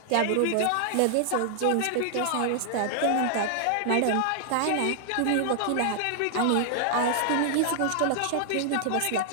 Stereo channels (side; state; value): both; different; correlation 0.00